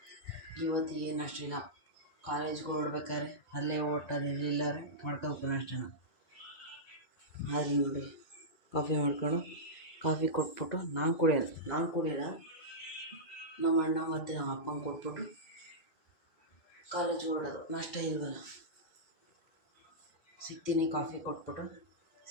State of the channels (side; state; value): right; late; 2.3 ms